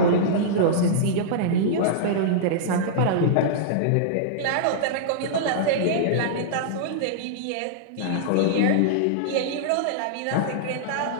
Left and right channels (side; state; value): both; different; correlation -0.02